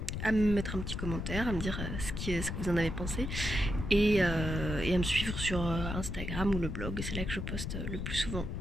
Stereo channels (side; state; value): left; noise; rumble, 4 dB below the sound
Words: à me mettre un petit commentaire, à me dire ce que vous en avez pensé et à me suivre sur Instagram ou le blog, c'est là que je poste le plus souvent.